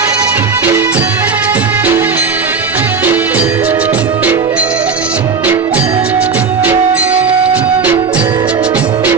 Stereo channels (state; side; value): quieter; left; 5.3 dB